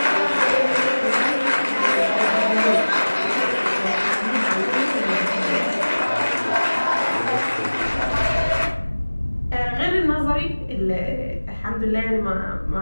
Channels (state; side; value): inverted; both; correlation -1.00